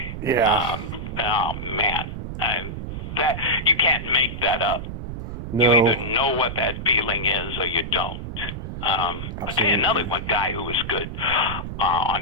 Yeah. Oh man, that you can't make that up. No. You either know what that feeling is or you don't. I'll tell you another one guy who was good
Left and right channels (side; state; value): right; noise; rumble, 7 dB below the sound